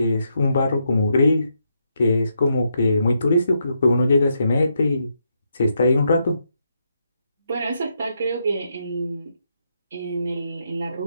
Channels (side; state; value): both; inverted; correlation -0.80